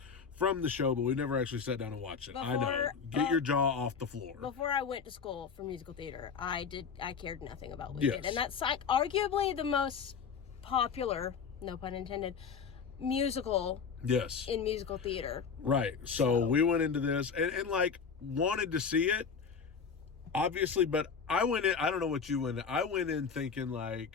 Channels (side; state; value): right; quieter; 6.0 dB